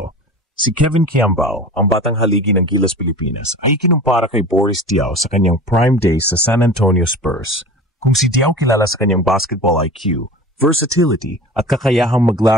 Si Kevin Quiambao, ang batang haligi ng Gilas Pilipinas, ay kinumpara kay Boris Diaw sa kanyang prime days sa San Antonio Spurs. Kung si Diaw kilala sa kanyang basketball IQ, versatility at kakayahang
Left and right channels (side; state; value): both; normal; correlation 0.36